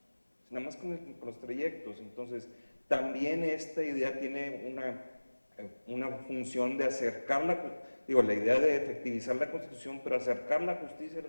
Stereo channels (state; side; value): inverted; both; correlation -1.00